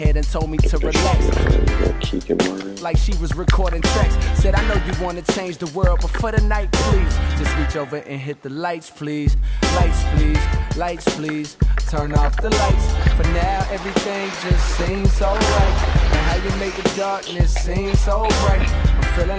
and told me to relax. Like she was recording tracks. Said I know you wanna change the world, but for the night, please just reach over and hit the lights, please. Lights, please. Lights, please. Turn off the lights. For now, everything just seems so right. And how you make the darkness seem so bright. I'm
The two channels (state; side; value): identical; both; correlation 1.00